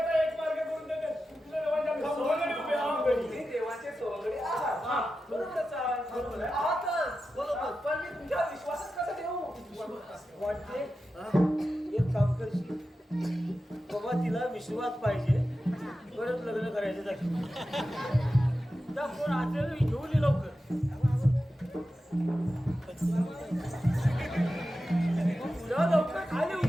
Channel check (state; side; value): normal; both; correlation 0.92